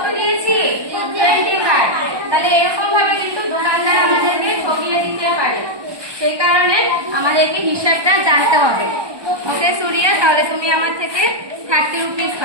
দিয়েছি? 25। তাহলে এরকম ভাবে কিন্তু দোকানদার আমাদেরকে ঠকিয়ে দিতে পারে, সেই কারণে আমাদেরকে হিসাবটা জানতে হবে। ওকে সুরিয়া, তাহলে তুমি আমার থেকে 30 রুপিস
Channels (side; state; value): left; late; 1.2 ms